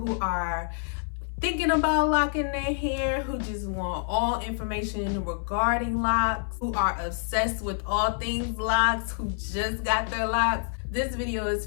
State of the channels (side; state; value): right; silent; 57 dB below the other